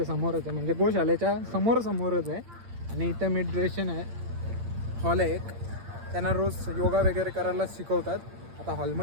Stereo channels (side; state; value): left; late; 8.7 ms